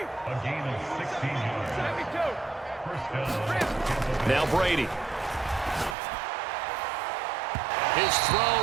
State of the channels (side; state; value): left; drops out; at 6.0 s